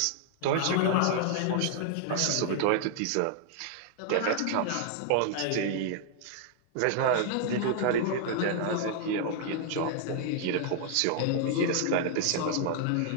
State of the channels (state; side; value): different; both; correlation -0.01